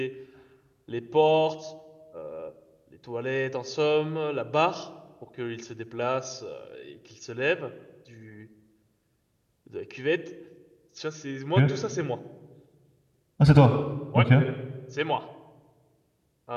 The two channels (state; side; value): identical; both; correlation 1.00